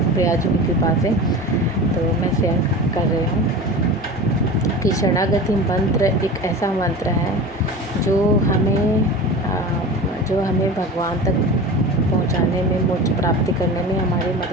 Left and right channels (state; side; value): normal; both; correlation 0.32